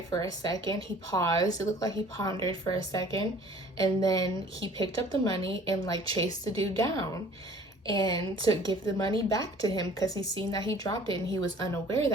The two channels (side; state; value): both; normal; correlation 0.51